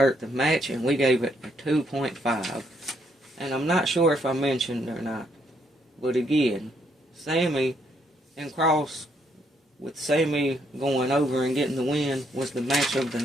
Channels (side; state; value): both; normal; correlation 0.72